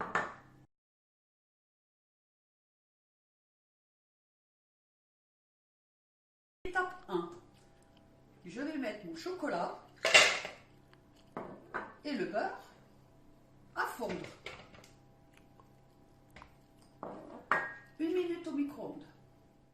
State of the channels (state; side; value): identical; both; correlation 1.00